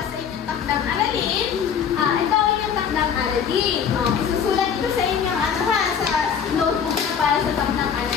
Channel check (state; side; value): quieter; right; 7.5 dB